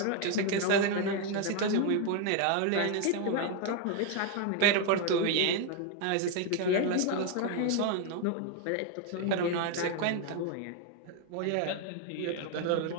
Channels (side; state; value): both; different; correlation 0.01